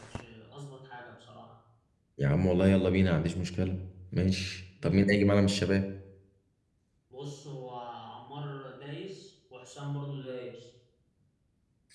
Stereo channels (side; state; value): both; identical; correlation 1.00